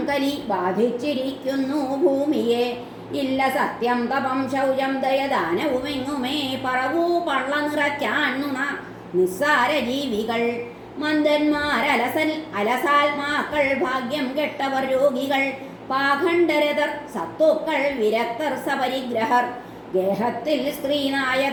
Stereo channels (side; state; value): both; identical; correlation 1.00